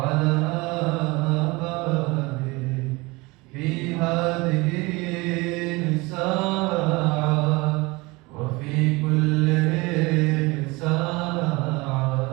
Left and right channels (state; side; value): quieter; left; 23.9 dB